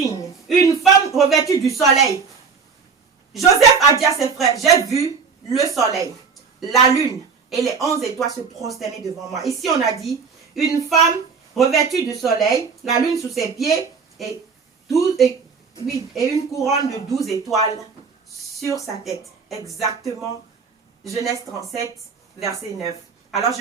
Une femme revêtue du soleil. Joseph a dit à ses frères, j'ai vu le soleil, la lune et les 11 étoiles se prosterner devant moi. Ici, on a dit, une femme revêtue du soleil, la lune sous ses pieds et une couronne de 12 étoiles sur sa tête. Exactement, Genèse 37, verset 9. Alors,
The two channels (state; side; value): quieter; left; 5.5 dB